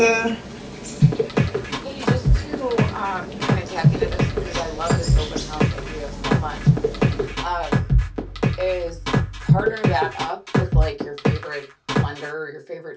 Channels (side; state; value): both; identical; correlation 1.00